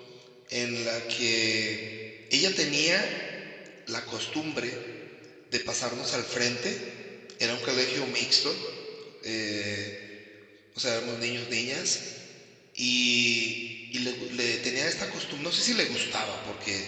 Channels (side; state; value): both; identical; correlation 1.00